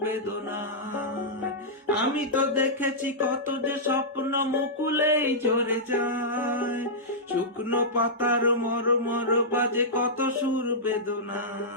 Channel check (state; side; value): normal; both; correlation -0.13